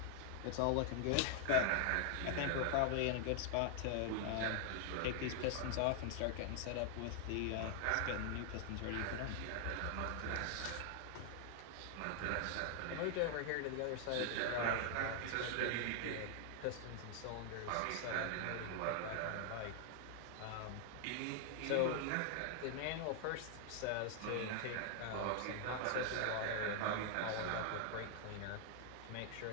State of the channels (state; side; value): different; both; correlation 0.00